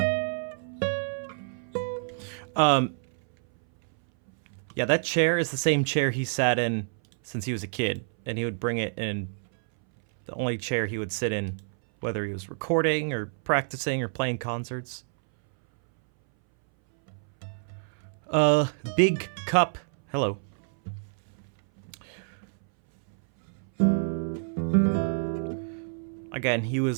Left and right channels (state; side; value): silent; left; 59 dB below the other